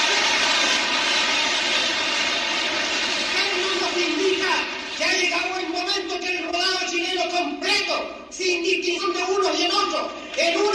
Esto nos indica que ha llegado el momento que el rodado chileno completo, sin distinción de unos y en otros, en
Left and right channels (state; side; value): identical; both; correlation 1.00